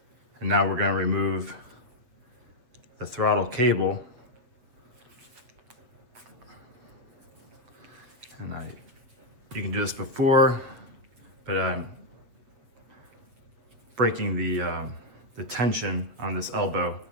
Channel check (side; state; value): left; late; 7.9 ms